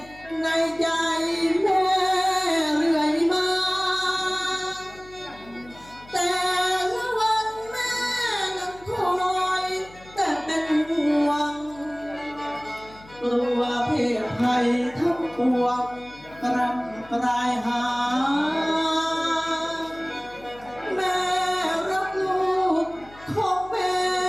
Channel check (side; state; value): left; noise; hum, 22 dB below the sound